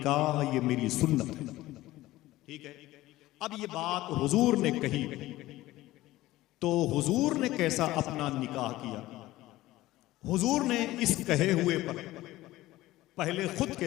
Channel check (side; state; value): right; quieter; 17.0 dB